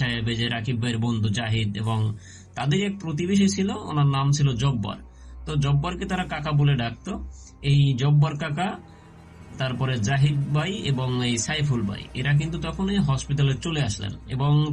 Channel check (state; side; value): identical; both; correlation 1.00